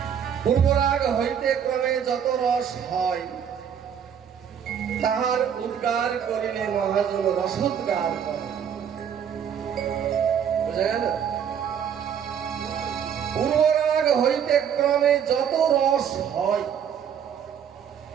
পূর্বরাগ হইতে ক্রমে যত রস হয় তাহার উদ্গার করিলে মহাজন রসোদ্গার করে। বুঝা গেল? পূর্বরাগ হইতে ক্রমে যত রস হয়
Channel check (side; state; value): left; quieter; 8.3 dB